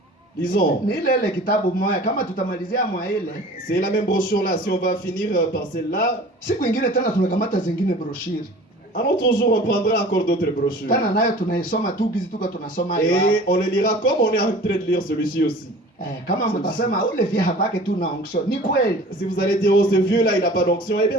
Lisons. Ni ile kitabu moja kama tutamalizia mwa ile. C'est la même brochure là. Si on va finir par celle-là, Siku ingine tena tunakamata zingine broshiri. un autre jour on prendra encore d'autres brochures. Tena nayo tunaisoma tu gizi tuko tunasoma hiyo. Et on le lira comme on est en train de lire celui-ci aussi. Kama mtasema ule vya habaki tu na onction. Ni kweli. Si vous allez dire, oh ce vieux-là il n'a pas d'onction, eh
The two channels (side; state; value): both; normal; correlation 0.43